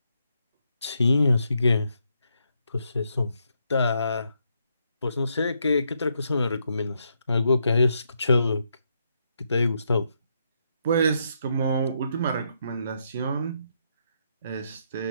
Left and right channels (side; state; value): both; inverted; correlation -0.78